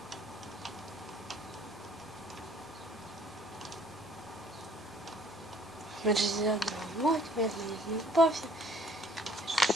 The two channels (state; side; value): normal; both; correlation 0.58